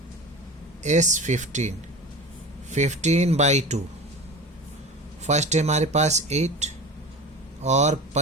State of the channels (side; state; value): both; normal; correlation 0.33